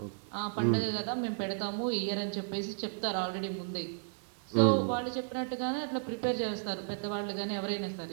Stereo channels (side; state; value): left; silent; digital silence